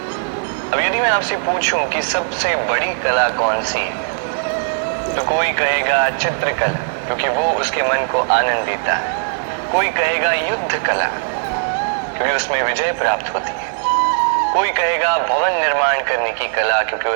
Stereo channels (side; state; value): left; silent; digital silence